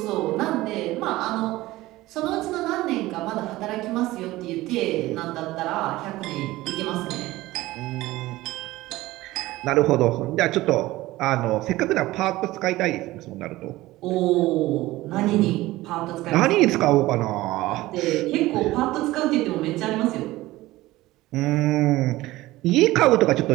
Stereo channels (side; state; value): left; quieter; 17.8 dB